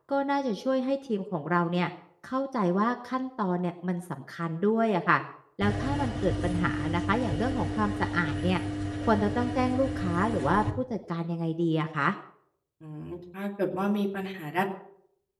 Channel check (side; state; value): both; identical; correlation 1.00